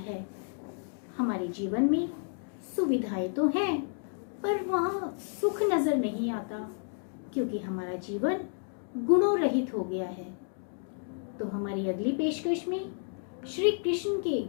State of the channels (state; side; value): silent; right; 56 dB below the other